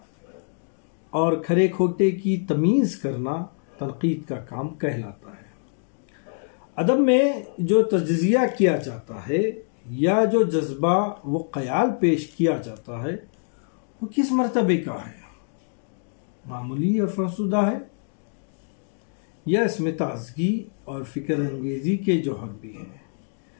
اور کھرے کھوٹے کی تمیز کرنا تنقید کا کام کہلاتا ہے۔ ادب میں جو تجزیہ کیا جاتا ہے یا جو جذبہ و خیال پیش کیا جاتا ہے وہ کس مرتبے کا ہے؟ معمولی اور فرسودہ ہے یا اس میں تازگی اور فکر انگیزی کے جوہر بھی ہیں؟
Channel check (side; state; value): right; silent; digital silence